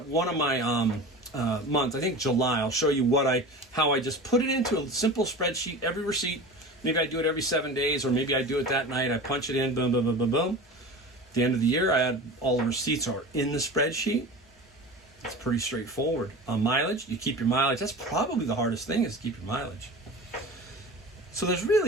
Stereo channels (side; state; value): both; normal; correlation 0.33